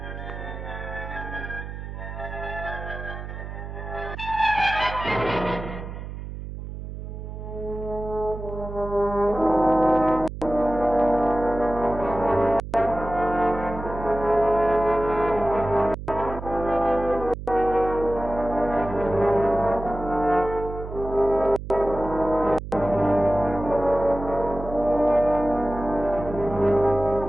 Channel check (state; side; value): noise; right; hum, 9 dB below the sound